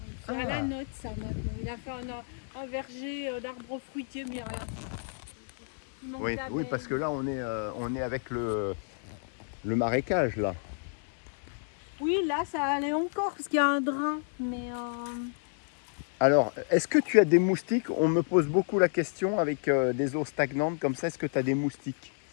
C'est Ah. à la note ça maintenant. Il a fait un verger d'arbres fruitiers, mais il n'y a rien. Il manque Oui, d'abeilles. oui, parce que là, on est avec le marécage, là. Oui, là ça allait encore parce qu'il y a un drain. Mais Alors, est-ce que tu as des moustiques? On me pose beaucoup la question avec des eaux stagnantes comme ça. Est-ce que tu as des moustiques?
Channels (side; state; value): right; silent; digital silence